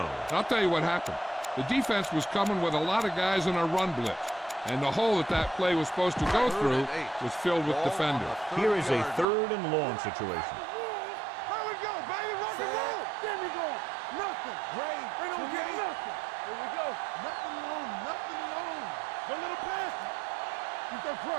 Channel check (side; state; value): left; drops out; at 9.2 s